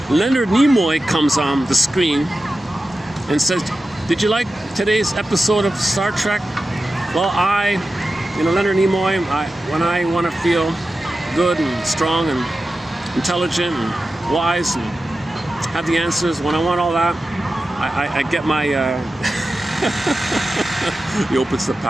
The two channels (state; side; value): normal; both; correlation 0.93